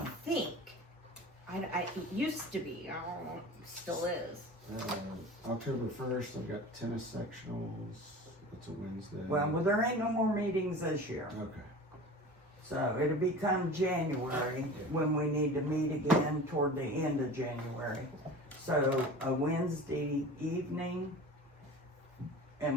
think. It used to be, I don't know, it still is. October 1st, I've got tennis sectionals, it's a Wednesday. Well, there ain't no more meetings this year. Okay. So it'll become January when we need to meet again toward the end of January. So a Wednesday evening,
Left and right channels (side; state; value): both; normal; correlation 0.37